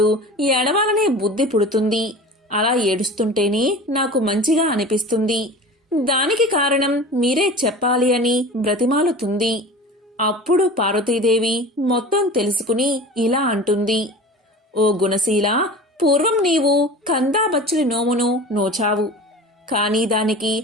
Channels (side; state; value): both; normal; correlation 0.36